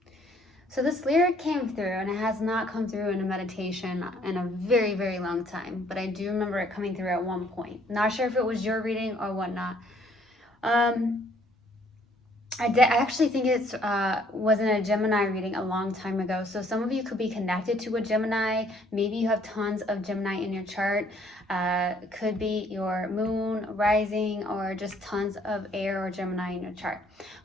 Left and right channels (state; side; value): normal; both; correlation 0.63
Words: So this lyric came through, and it has not come through in a meditation in a very, very long time. But I do remember it coming through at one point. Not sure if it was your reading or whatnot. I actually think it was in a Gemini reading a long time ago. So some of you could be connected to a Gemini. Maybe you have tons of Gemini in your chart. Could be your moon, rising, or just tons of air or Gemini in your chart.